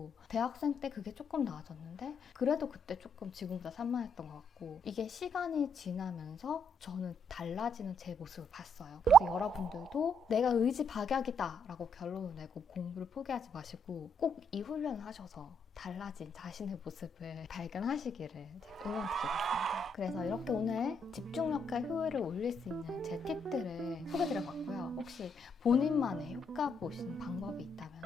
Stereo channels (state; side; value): normal; both; correlation 0.74